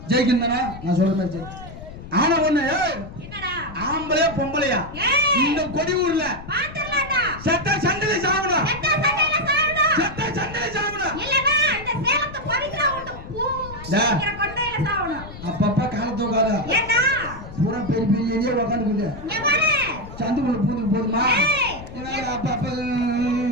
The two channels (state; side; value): noise; left; rumble, 14 dB below the sound